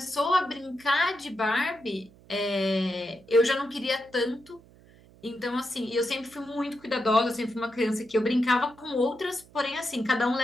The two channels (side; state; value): right; noise; hum, 25 dB below the sound